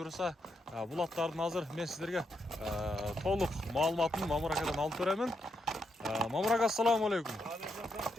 бул аттардын азыр мен сіздерге толук маалыматын Мамыракадан алып беремин. Мамырак, ассаламу алейкум.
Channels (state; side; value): normal; both; correlation 0.81